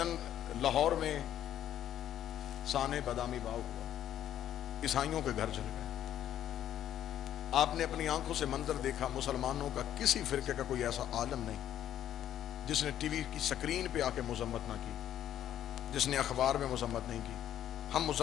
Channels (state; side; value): quieter; right; 11.2 dB